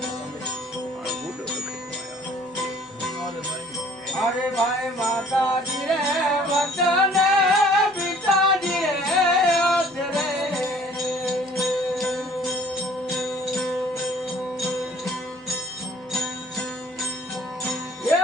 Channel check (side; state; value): both; normal; correlation 0.54